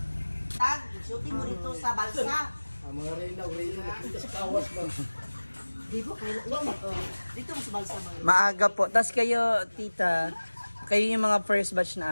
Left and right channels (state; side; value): inverted; both; correlation -1.00